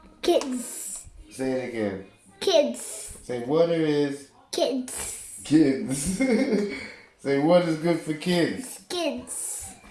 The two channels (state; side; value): identical; both; correlation 1.00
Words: kids. Say it again. Kids. Say water is... Kids. Kids. Say water is good for kids. Kids.